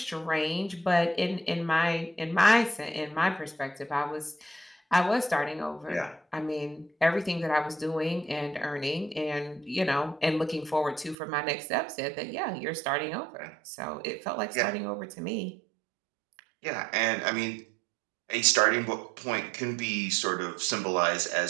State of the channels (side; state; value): left; drops out; at 11.2 s